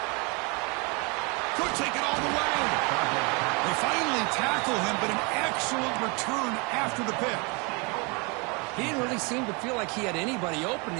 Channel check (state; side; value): quieter; left; 30.6 dB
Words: Could take it all the way. They finally tackle him, but an excellent return after the pick. He didn't really seem to feel like he had anybody open.